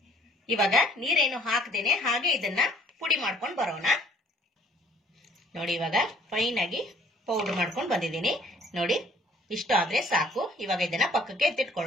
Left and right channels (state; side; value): normal; both; correlation 0.59